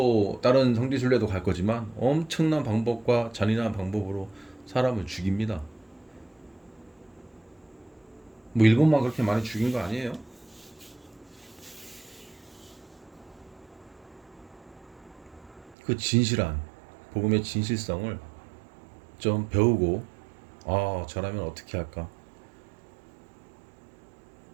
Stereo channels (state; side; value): drops out; left; at 15.8 s